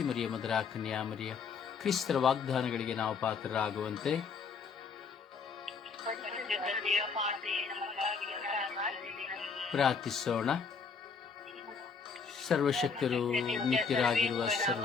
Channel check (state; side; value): quieter; right; 5.4 dB